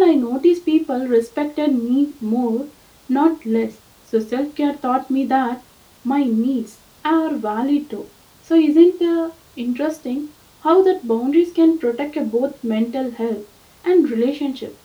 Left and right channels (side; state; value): both; identical; correlation 1.00